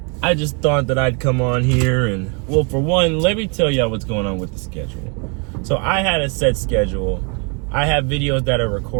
I just thought that I'd come on here and, well, for one, let me tell y'all what's going on with the schedule. So I had a set schedule. I have videos that are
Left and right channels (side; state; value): left; quieter; 34.7 dB